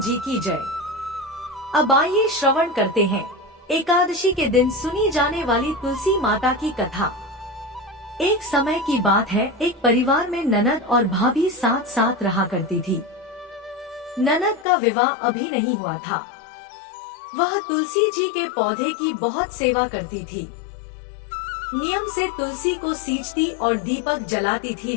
जी की जय। अब आइए श्रवण करते हैं एकादशी के दिन सुनी जाने वाली तुलसी माता की कथा। एक समय की बात है, एक परिवार में ननद और भाभी साथ साथ रहा करती थी। ननद का विवाह अभी नहीं हुआ था। वह तुलसी जी के पौधे की बहुत सेवा करती थी। नियम से तुलसी को सींचती और दीपक जलाती थी,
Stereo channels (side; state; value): right; drops out; at 14.7 s